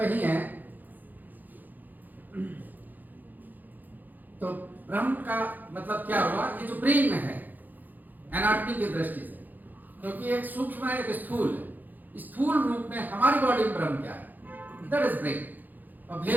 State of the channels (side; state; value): left; late; 0.085 ms